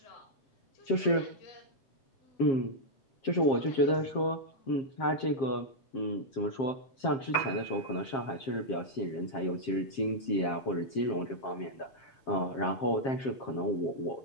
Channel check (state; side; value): late; right; 7.5 ms